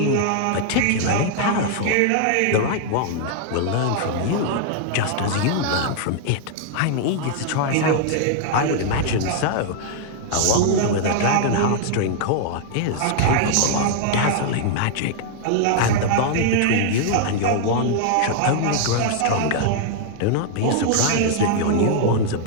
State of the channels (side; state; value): both; different; correlation 0.00